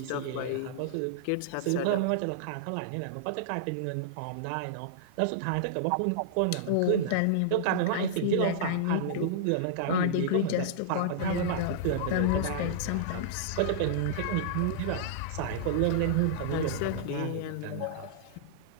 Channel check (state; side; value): different; both; correlation -0.02